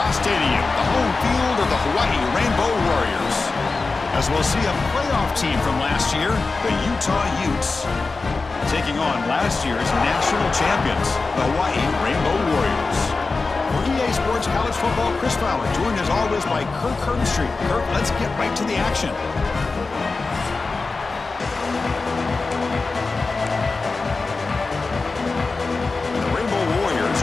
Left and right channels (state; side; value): quieter; right; 3.9 dB